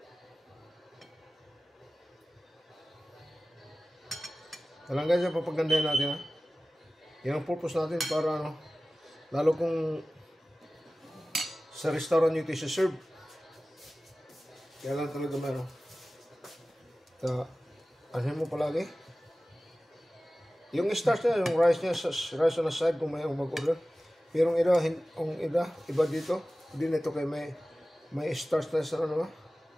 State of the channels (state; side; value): normal; both; correlation 0.96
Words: Alam guys, papagandahin natin ha. Yan ang purpose natin para ano, lalo kung sa restaurant nyo ito serve. Kaya lang talaga meron. Asin mo palagi. Yung starch niya, yung rice niya, rice on the side kung may mag-order. Pero iba dito. Hindi na ito kay may starch na sa ano